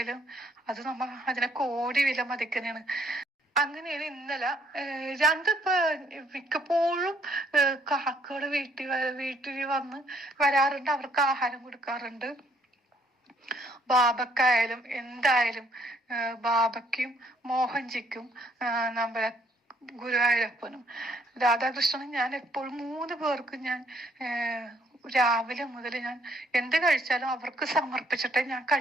അത് നമ്മ അതിനെ കോടി വില മതിക്കുന്നതാണ്. അങ്ങനെയാണ് ഇന്നലെ രണ്ടിപ്പോ മിക്കപ്പോഴും കാക്കയുടെ വീട്ടിൽ വന്ന് വരാറുണ്ട്, അവർക്ക് ആഹാരം കൊടുക്കാറുണ്ട്. ബാബക്കായാലും എന്തായാലും ബാബയ്ക്കും മോഹൻജിക്കും നമ്മുടെ ഗുരുവായൂരപ്പനും രാധാകൃഷ്ണനും ഞാൻ എപ്പോഴും 3 പേർക്കും ഞാൻ രാവിലെ മുതൽ ഞാൻ എന്ത് കഴിച്ചാലും അവർക്ക് സമർപ്പിച്ചിട്ടേ ഞാൻ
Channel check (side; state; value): both; normal; correlation 0.66